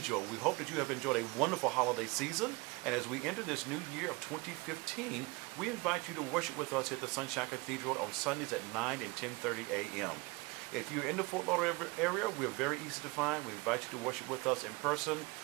We hope that you have enjoyed a wonderful holiday season, and as we enter this new year of 2015, we invite you to worship with us at the Sunshine Cathedral on Sundays at 9 and 10:30 a.m. If you're in the Fort Lauderdale area, we're very easy to find. We invite you to worship with us in person,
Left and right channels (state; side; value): quieter; left; 25.4 dB